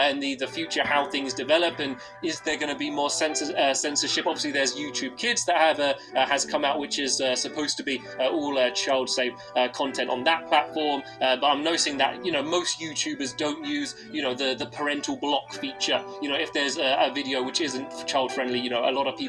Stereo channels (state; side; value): identical; both; correlation 1.00